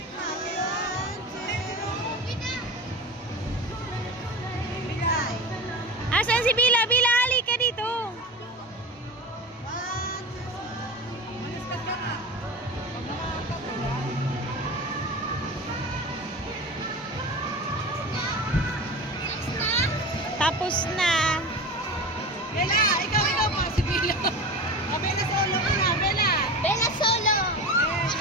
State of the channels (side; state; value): both; normal; correlation 0.29